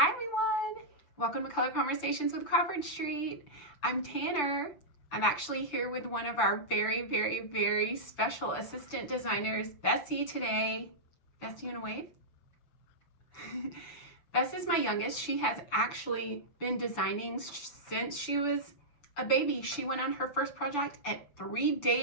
everyone! Welcome to Color Conversations with Crawford Street. I'm Tanner. I'm actually here with one of our very special assistant designers, Bessie, today. Bessie, you wanna wave? Bess is my youngest. She has actually been designing since she was a baby. She went on her first project at 3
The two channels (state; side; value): late; right; 6.8 ms